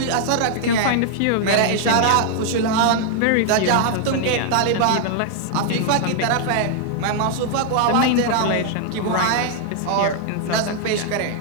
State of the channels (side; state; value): both; different; correlation 0.00